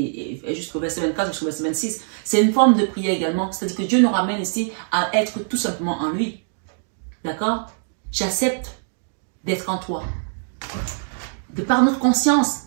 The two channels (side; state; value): left; silent; digital silence